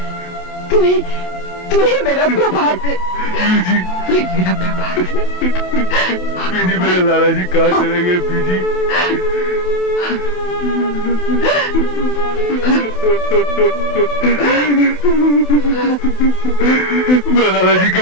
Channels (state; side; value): late; right; 28 ms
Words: तू ही मेरा प्रभात है, बीजी, तू ही मेरा प्रभात है। बीजी मेरे लाला जी कहाँ चले गए बीजी? मैं लाला जी के